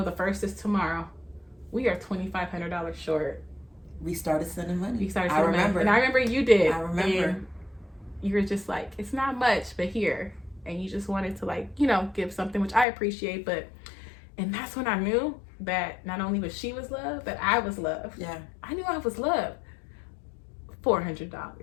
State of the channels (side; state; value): right; drops out; at 12.9 s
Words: the 1st is tomorrow. We are $2,500 short. We started sending money. I remember. And I remember you did. I remember. And you were just like, it's not much, but here. And you just wanted to, like, you know, give something, which I appreciate. And that's when I knew that not only was she was loved, but I was loved. Yeah. I knew I was loved. $400,